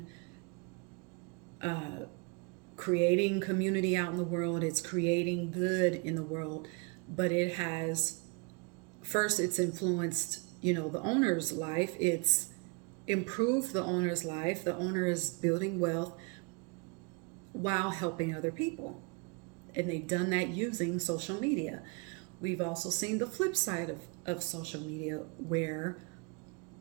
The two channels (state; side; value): quieter; left; 31.2 dB